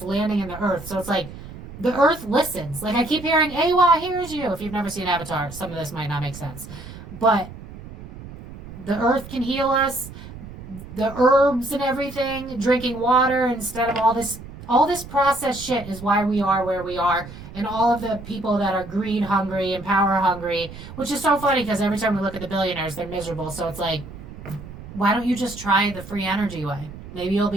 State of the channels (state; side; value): noise; right; rumble, 14 dB below the sound